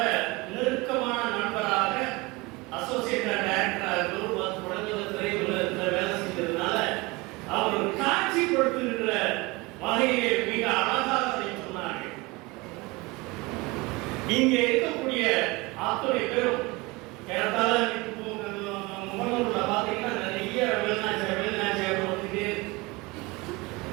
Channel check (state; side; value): quieter; left; 24.0 dB